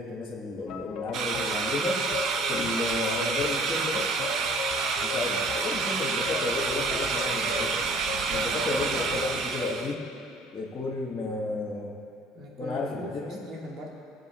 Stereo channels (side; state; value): both; normal; correlation 0.52